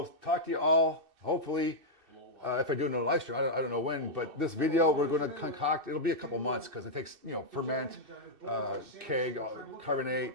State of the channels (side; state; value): left; late; 2.6 ms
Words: talk to you all, hopefully, if I do another live stream. I don't know when, but this video we're going to concoct. It'll be a couple months because it takes, ferment, keg, carbonate.